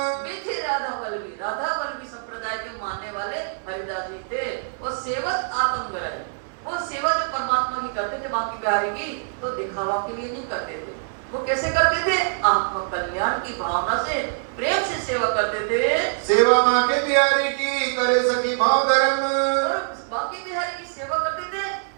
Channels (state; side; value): silent; left; 63 dB below the other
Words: बेटे राधा वल्लभी संप्रदाय के मानने वाले हरिदास जी थे। वो सेवत आत्मगर, वो सेवा जो परमात्मा की करते थे बांके बिहारी की, तो दिखावा के लिए नहीं करते थे। वो कैसे करते थे? आत्म कल्याण की भावना से प्रेम से सेवा करते थे। सेवा बांके बिहारी की करे सखी भाव धर्म, बांके बिहारी की सेवा करते थे